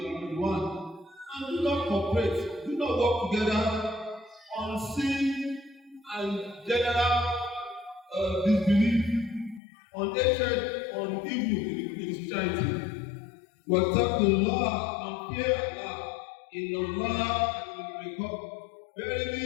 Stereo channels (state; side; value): drops out; right; at 9.6 s